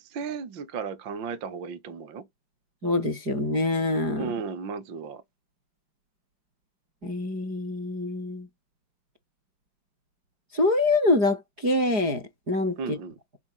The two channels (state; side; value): late; left; 4.9 ms